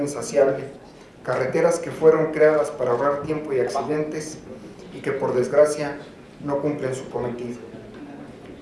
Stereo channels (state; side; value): identical; both; correlation 1.00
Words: insaciable, carreteras que fueron creadas para ahorrar tiempo y accidentes y que por desgracia no cumplen su cometido.